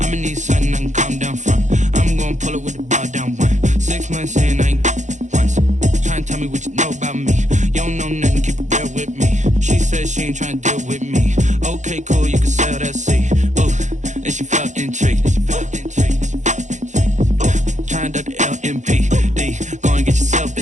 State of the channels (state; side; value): late; left; 0.35 ms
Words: need something I can calm down from. I'm gonna pull it with the bar down one. 6 months in, I ain't once. Trying to tell me what you know about me. You don't know nothing, keep it real with me. She said she ain't trying to deal with me. Okay, cool, you can sell that seat. Ooh, and she felt intrigued. Trying to duck the LMPD. Go and get your